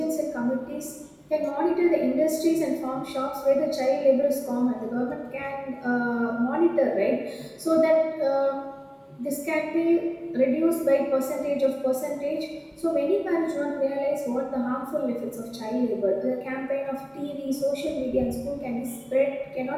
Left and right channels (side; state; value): both; identical; correlation 1.00